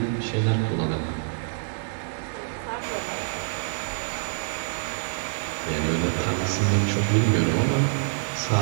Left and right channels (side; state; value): left; silent; digital silence